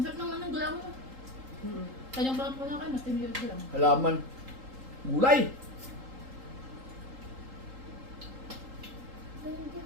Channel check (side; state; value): left; late; 3.8 ms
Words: naman ng gulaw mo. Kanyang bakit po na kayo, mas tinilid ko lang. Halaman. Gulay.